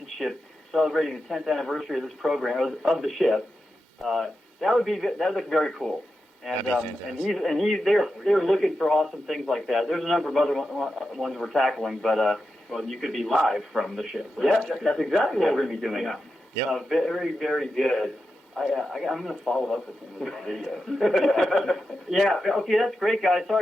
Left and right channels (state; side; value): normal; both; correlation 0.89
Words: ship celebrating the 10th anniversary of this program, of the ship, that would look very cool. And they're looking for awesome things like that. There's a number of other ones we're tackling, but well, you could be live from the ship. Right? Yeah, that's exactly what we're going to be doing. Yeah. Yep. Very, very good. I'm going to follow up with him with a video. Yeah. Okay, that's great, guys.